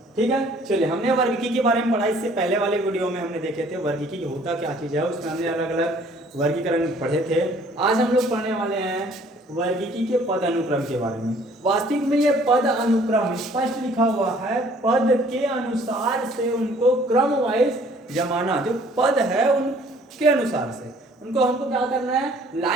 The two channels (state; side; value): normal; both; correlation 0.57